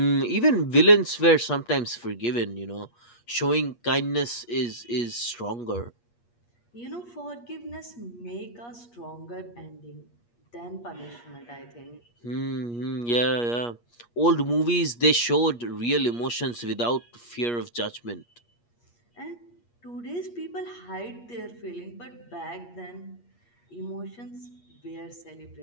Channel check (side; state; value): right; late; 8.4 ms